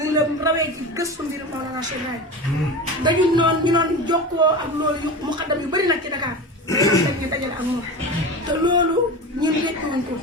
ngi la rawee ci gëstu mbir Mawlana Cheikh Ibrahima dañu noonu ñu doon jokkoo ak loolu yu mu xaddam yu bëri nag ci Dakar dañ ñu dajale ak moom te loolu ñun rekkuwuñ ko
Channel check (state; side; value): normal; both; correlation 0.28